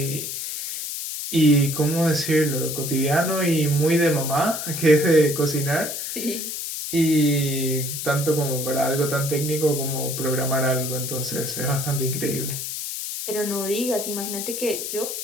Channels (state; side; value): noise; left; hiss, 5 dB below the sound